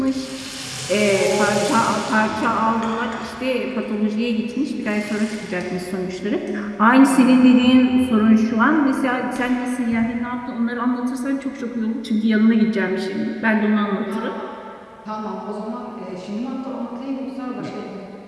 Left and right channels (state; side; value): identical; both; correlation 1.00